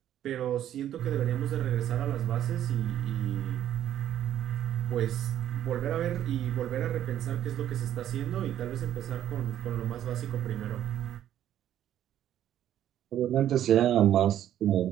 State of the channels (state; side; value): quieter; left; 11.3 dB